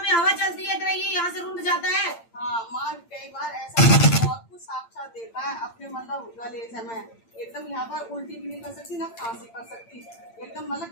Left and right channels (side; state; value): right; late; 8.8 ms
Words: हवा चलती है तेरा, ये यहाँ से रुंध जाता है। हाँ माँ, कई बार ऐसा बहुत कुछ साक्षात देखा है अपने, मतलब गले से मैं एकदम यहाँ पर उल्टी भी नहीं कर सकती, ना खांसी कर सकती। एकदम मतलब